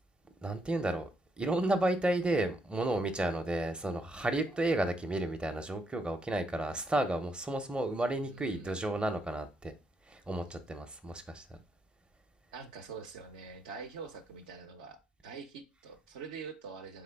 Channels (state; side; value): normal; both; correlation 0.77